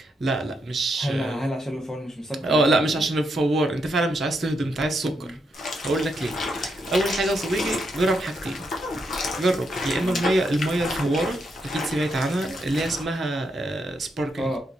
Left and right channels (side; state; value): both; normal; correlation 0.80